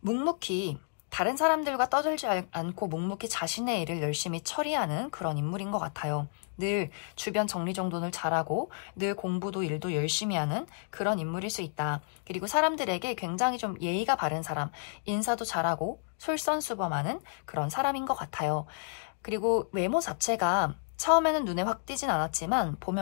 묵묵히 다른 사람들과 떠들지 않고 묵묵히 자신의 일을 열심히 처리하는 그런 인물인 것 같아요. 늘 주변 정리정돈을 잘하고 늘 공부도 일도 열심히 하는 그런 인물일 수 있다. 그리고 사람들에게 굉장히 좀 예의가 바른 사람, 인사도 잘하고 솔선수범하는 그런 사람인 것 같아요. 그리고 외모 자체가 처음에는 눈에 확 띄진 않았지만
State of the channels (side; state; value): right; silent; digital silence